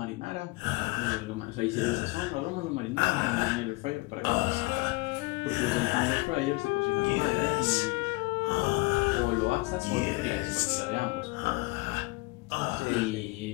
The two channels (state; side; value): quieter; right; 24.6 dB